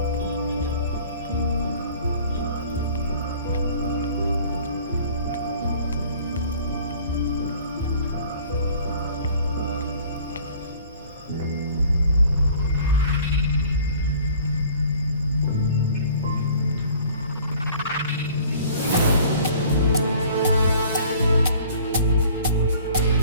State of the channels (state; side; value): inverted; both; correlation -0.51